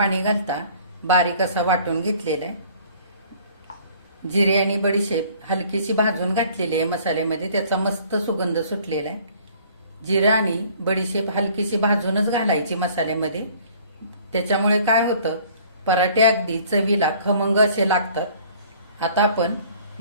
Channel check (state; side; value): inverted; both; correlation -0.54